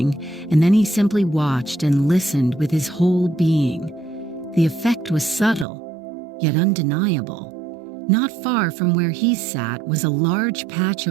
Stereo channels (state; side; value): drops out; left; at 5.7 s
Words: and then he simply watched and listened with his whole being. The effect was subtle, yet undeniable. Not far from where he sat was a large patch